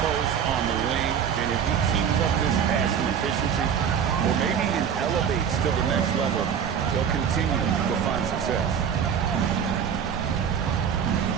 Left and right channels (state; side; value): quieter; left; 7.9 dB